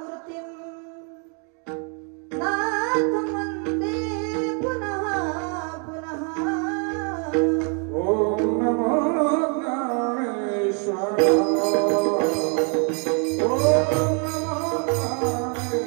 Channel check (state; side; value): quieter; left; 39.2 dB